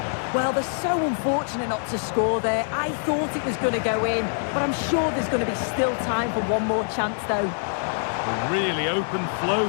Well, they're so unfortunate not to score there. I thought it was going to go in, but I'm sure there's going to be still time for one more chance, though. A really open flow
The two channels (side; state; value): right; silent; digital silence